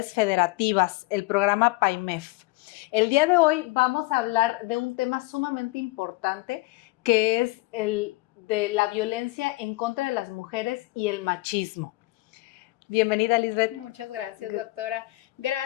federativas, el programa PAIMEF. El día de hoy vamos a hablar de un tema sumamente importante que es el de la violencia en contra de las mujeres y el machismo. Bienvenida, Lisbeth. Muchas gracias, doctora.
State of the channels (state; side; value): quieter; right; 21.6 dB